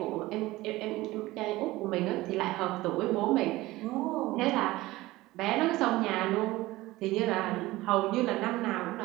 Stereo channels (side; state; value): left; quieter; 18.6 dB